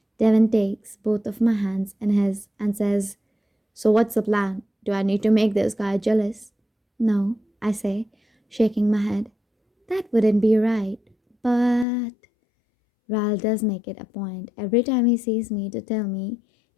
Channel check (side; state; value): right; drops out; at 11.9 s